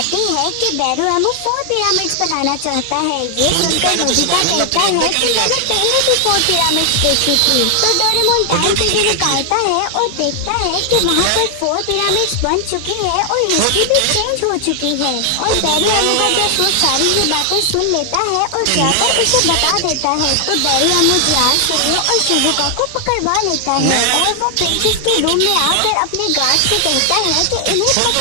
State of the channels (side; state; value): both; different; correlation 0.00